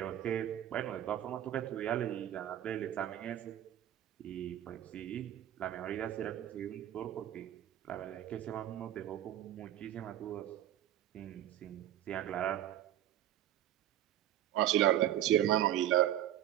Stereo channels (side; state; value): left; quieter; 12.1 dB